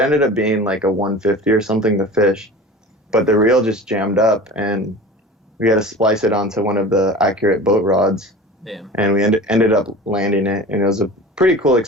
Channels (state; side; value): normal; both; correlation 0.37